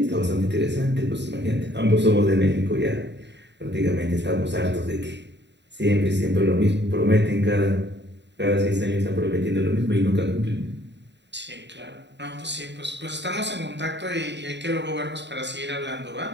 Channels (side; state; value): left; late; 0.51 ms